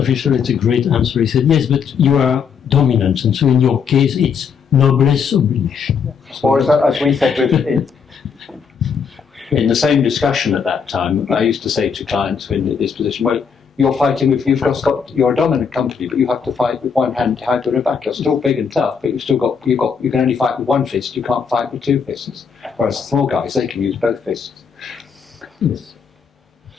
had a great answer. He said, yes, but you are dominant, and so in your case, it's noblesse oblige. Or as we said in the same discussion at that time, I used to say to clients in this position, well, you're fighting with, you're a dominant company, but you have to fight with one hand tied to the back. You're still big and tough, but you can only fight with one fist. You can't fight with two fists. Whereas the small guys, they can use both fists. Yes.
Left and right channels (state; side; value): quieter; right; 6.4 dB